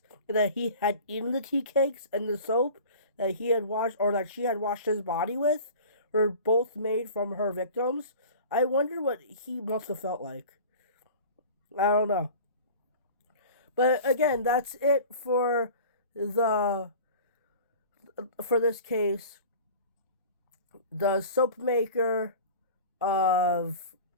and that he had eaten the tea cakes and the soap that he had washed, or that she had washed his body with, were both made from her victims. I wonder what he must have felt like. I don't know. But again, that's it for this case. The soap maker of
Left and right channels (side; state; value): both; inverted; correlation -0.40